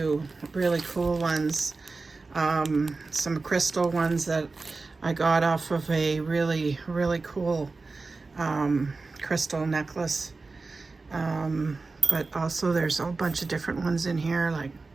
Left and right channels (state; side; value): quieter; left; 3.8 dB